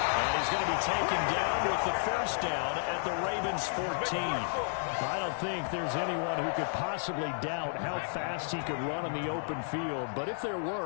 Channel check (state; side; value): silent; right; digital silence